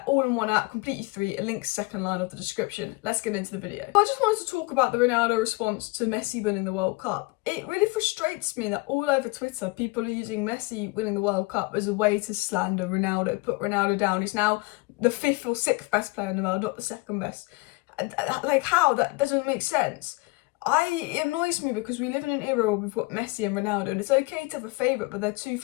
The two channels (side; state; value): right; quieter; 24.3 dB